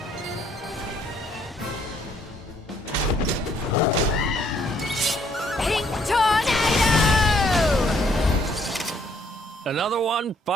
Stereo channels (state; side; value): normal; both; correlation 0.66